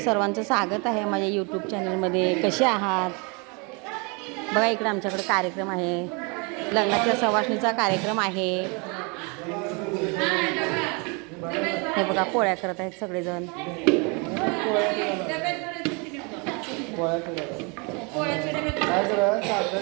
स्वागत आहे माझ्या यूट्यूब चॅनलमध्ये. कसे आहात? बघा इकडे आमच्याकडे कार्यक्रम आहे, लग्नाच्या सवासणीचा कार्यक्रम आहे. हे बघा पोळ्या करत आहेत सगळेजण.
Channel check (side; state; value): left; quieter; 31.9 dB